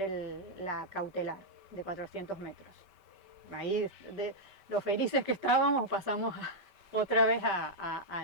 la cautelar de 400 metros. Ahí, de los felices que estábamos, pasamos otra vez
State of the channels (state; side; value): late; left; 5.1 ms